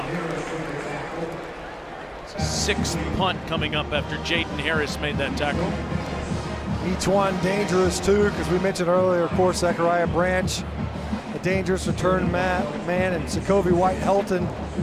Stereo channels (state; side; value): identical; both; correlation 1.00